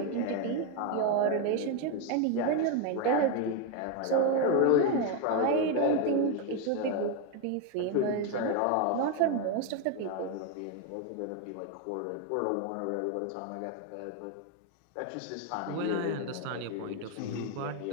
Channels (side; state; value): both; different; correlation 0.01